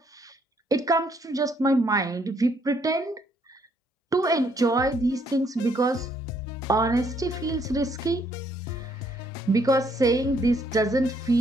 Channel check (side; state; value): both; normal; correlation 0.69